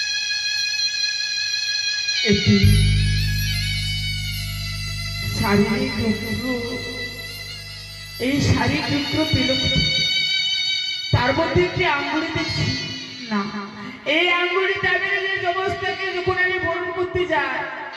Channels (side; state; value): both; identical; correlation 1.00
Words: একটি শাড়ির টুকরো, এই শাড়ির টুকরো পেল, তার মধ্যে একটি আঙ্গুলি দেখছি। না, এই আঙ্গুলিটা আমি নিজের জবস্থাকে যখন আমি বরণ করতে যাই,